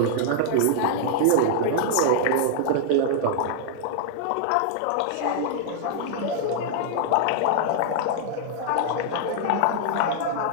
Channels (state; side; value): different; both; correlation -0.01